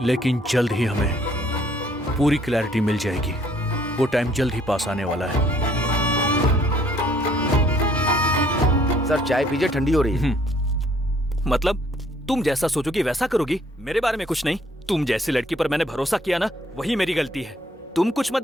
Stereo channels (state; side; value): normal; both; correlation 0.63